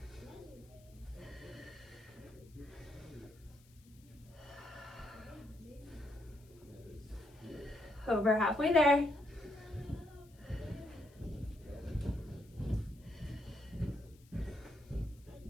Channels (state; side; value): noise; left; hiss, 28 dB below the sound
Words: Over halfway there.